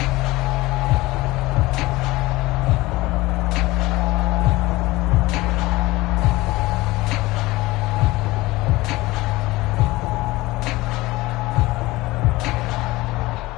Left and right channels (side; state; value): right; quieter; 19.8 dB